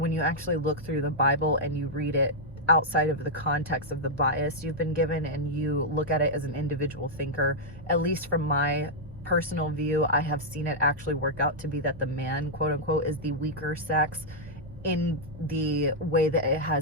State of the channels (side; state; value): both; normal; correlation -0.05